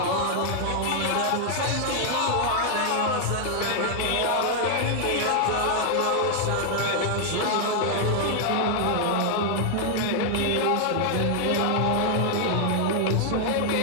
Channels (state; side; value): different; both; correlation 0.00